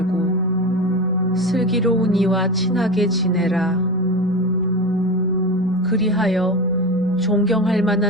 슬기로운 이와 친하게 지내라. 그리하여 존경할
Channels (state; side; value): normal; both; correlation 0.24